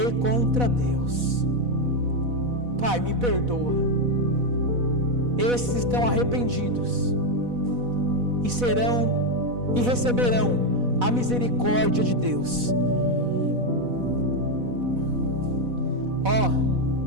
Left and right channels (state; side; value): late; left; 4.1 ms